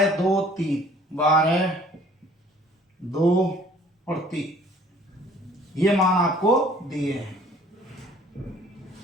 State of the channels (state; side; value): normal; both; correlation 0.54